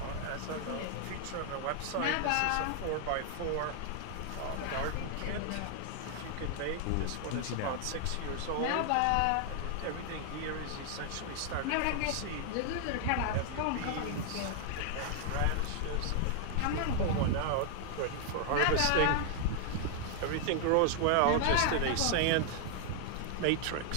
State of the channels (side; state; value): both; different; correlation 0.00